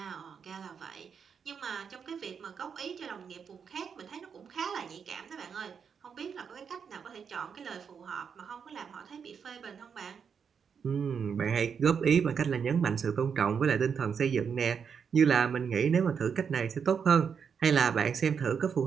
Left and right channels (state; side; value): quieter; left; 6.7 dB